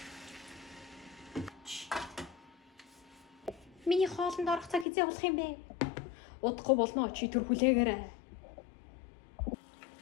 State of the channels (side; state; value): right; drops out; at 4.9 s